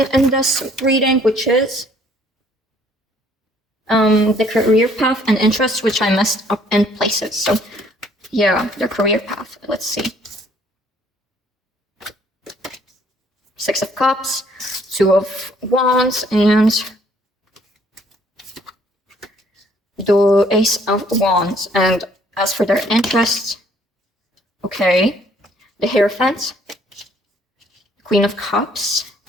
in this reading, which is the career path and interests, which I messed up in places. So yeah, the career path, let's see. 6 of Cups, 2 of Wands, and the Ace of Wands. And as for their interests, okay, the Hierophant, Queen of Cups,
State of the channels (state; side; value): normal; both; correlation 0.62